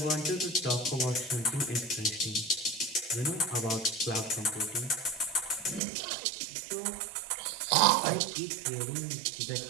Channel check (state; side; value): drops out; left; at 5.8 s